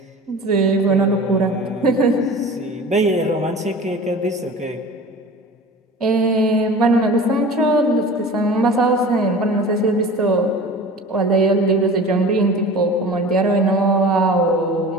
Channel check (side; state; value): both; normal; correlation 0.38